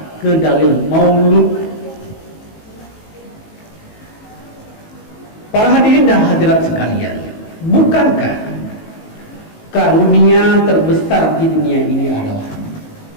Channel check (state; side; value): late; right; 19 ms